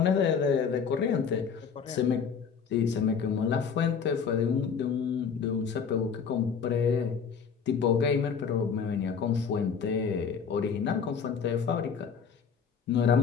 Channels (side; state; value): right; quieter; 6.5 dB